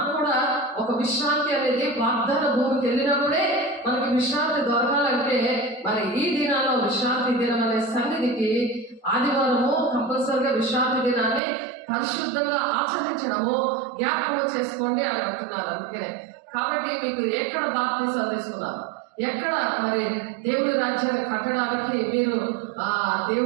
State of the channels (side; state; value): left; drops out; at 11.4 s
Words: కూడా ఒక విశ్రాంతి అనేది వాగ్దాన భూమికి వెళ్ళినప్పుడే మనకి విశ్రాంతి దొరకాలంటే మరి ఈ దినాల్లో విశ్రాంతి దినం అనే సన్నిధికి ఆదివారము కంపల్సరిగా విశ్రాంతి దినాన్ని పరిశుద్ధంగా ఆచరించడము జ్ఞాపకం చేసుకోండి అని అంటున్నారు. అందుకనే కాబట్టి మీకు ఎక్కడ బాప్తిసాలు తీసుకున్నారు, ఎక్కడ మరి దేవుడి రాజ్యాన్ని కట్టడానికి మీరు